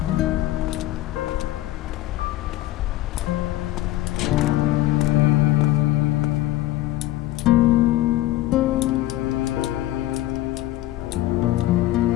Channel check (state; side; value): quieter; right; 15.8 dB